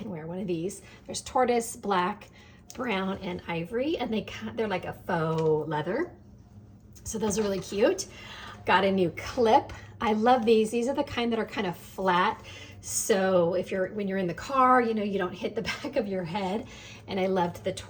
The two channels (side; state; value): both; identical; correlation 1.00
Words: wear one of these. There's tortoise, black, brown, and ivory, and they're like a faux leather. So those are really cute. Got a new clip. I love these. These are the kind that are kind of flat. So when you're in the car, you don't hit the back of your head. And I loved the